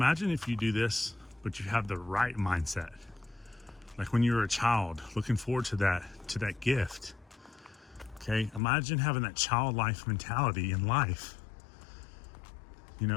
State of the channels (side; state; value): right; drops out; at 8.6 s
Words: if you do this, but you have the right mindset. Like when you were a child, looking forward to that gift. Okay, imagine having that childlike mentality in life. You